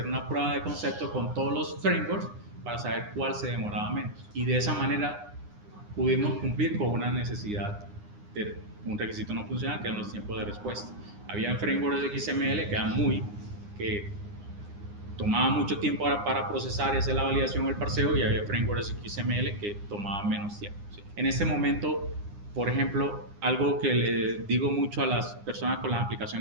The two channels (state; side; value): late; left; 9.8 ms